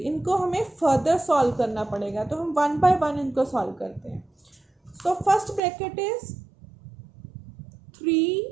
हमें फर्दर सॉल्व करना पड़ेगा. तो हम 1 बाय 1 इनको सॉल्व करते हैं. So first bracket is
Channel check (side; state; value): left; drops out; at 5.6 s